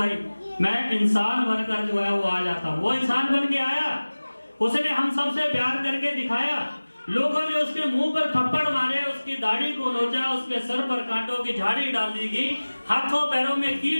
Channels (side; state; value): both; inverted; correlation -1.00